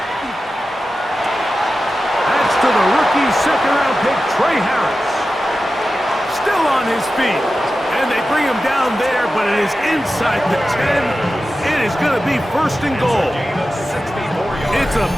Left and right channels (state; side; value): normal; both; correlation 0.93